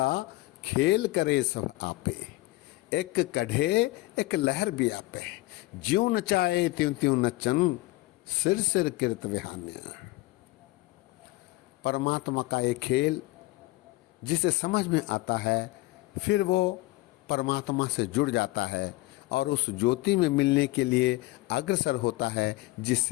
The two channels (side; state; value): right; quieter; 20.2 dB